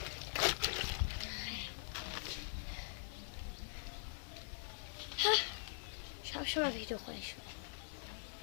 সবসময় ভিডিও করে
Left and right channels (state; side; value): silent; right; digital silence